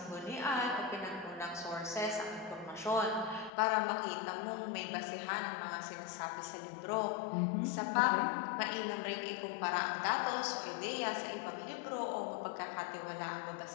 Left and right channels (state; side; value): drops out; right; at 3.5 s